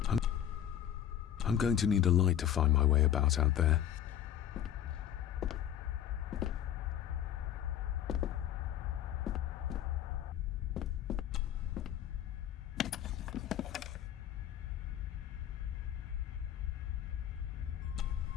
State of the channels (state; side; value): quieter; right; 10.6 dB